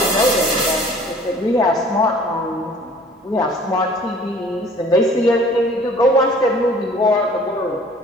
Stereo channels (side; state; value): both; normal; correlation 0.51